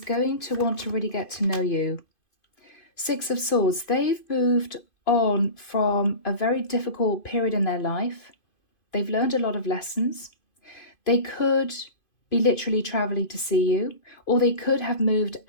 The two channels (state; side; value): late; right; 2.5 ms